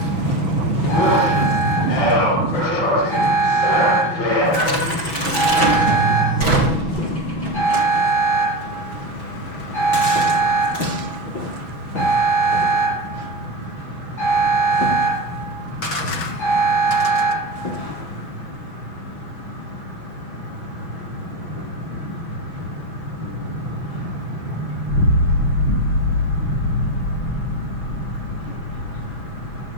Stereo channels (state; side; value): late; right; 6.1 ms